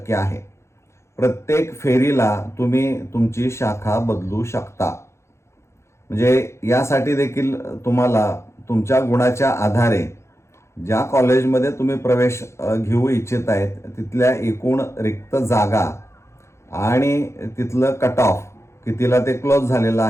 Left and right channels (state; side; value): late; right; 0.13 ms